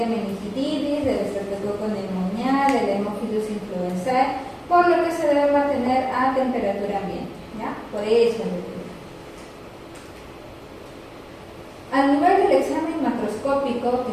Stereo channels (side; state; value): both; identical; correlation 1.00